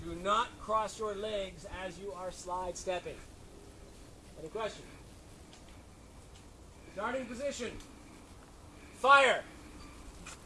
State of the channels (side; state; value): both; identical; correlation 1.00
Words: Do not cross your legs as you are slide stepping. Any questions? Starting position. Fire.